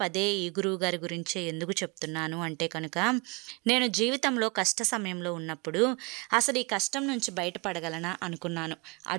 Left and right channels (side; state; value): left; quieter; 29.2 dB